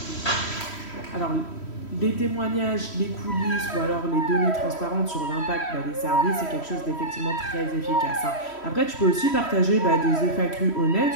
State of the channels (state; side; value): late; right; 3.1 ms